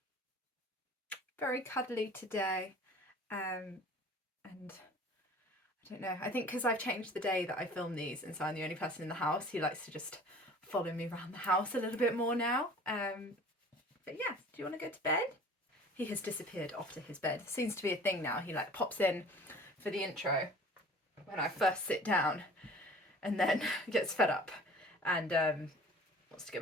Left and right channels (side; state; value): both; normal; correlation 0.46